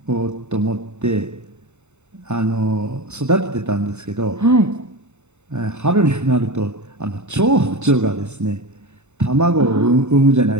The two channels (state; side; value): late; left; 0.82 ms